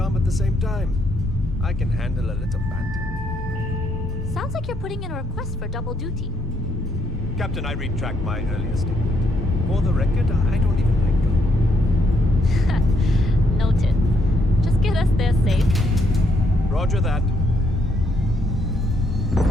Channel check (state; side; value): normal; both; correlation 0.73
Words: at the same time. I can handle a little banter. Sounds like you're putting in a request for double duty. Captain, I retract my earlier statement. For the record, I don't even like gum. Noted. Just get us there safe. Roger that.